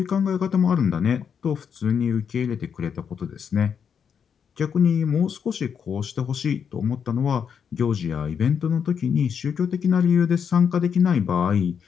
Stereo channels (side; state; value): right; quieter; 7.2 dB